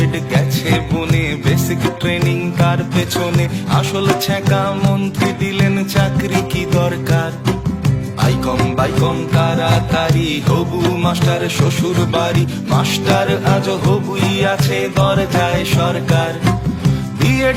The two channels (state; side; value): identical; both; correlation 1.00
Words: গেছে বনে, বেসিক ট্রেনিং তার পেছনে, আসল ছ্যাঁকা মন্ত্রী দিলেন চাকরি কি দরকার। আইকম বাইকম তাড়াতাড়ি হবু মাস্টার শ্বশুর বাড়ি, মাস্টার আজ হবুই আছে দরজায় সরকার।